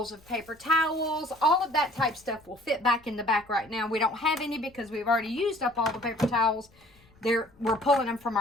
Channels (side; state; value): left; noise; rumble, 30 dB below the sound